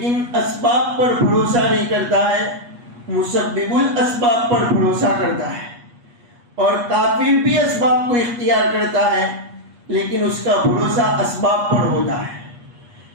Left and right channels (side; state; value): left; late; 8.4 ms